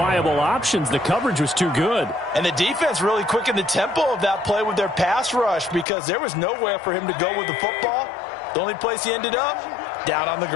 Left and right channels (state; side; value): drops out; right; at 5.9 s